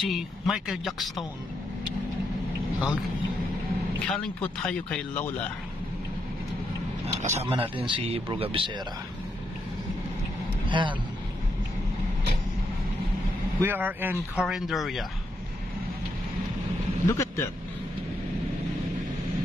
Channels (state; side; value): normal; both; correlation 0.80